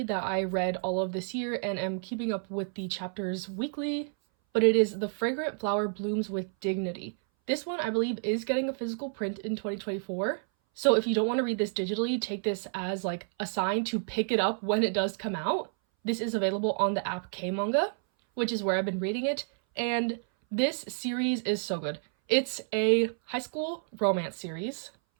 that I read all of this year and am keeping up with the chapters weekly, but it is The Fragrant Flower Blooms with Dignity. This one I believe is getting a physical print in 2024, so if you don't want to read this digitally, take this as a sign to pick it up when it does come out. This is available on the app K-Manga, which is where I've been reading it, and this series is so good. It's a high school romance series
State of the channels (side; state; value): left; silent; 58 dB below the other